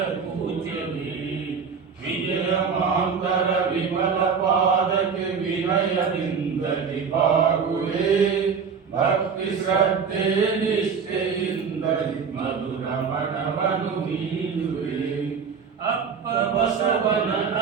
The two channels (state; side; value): quieter; left; 6.1 dB